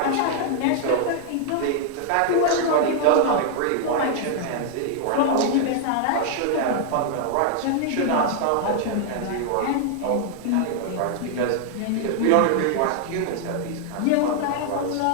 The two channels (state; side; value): different; both; correlation -0.01